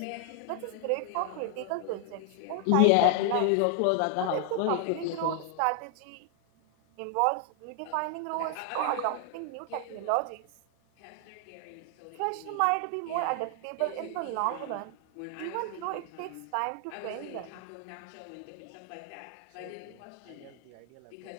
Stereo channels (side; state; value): both; different; correlation 0.00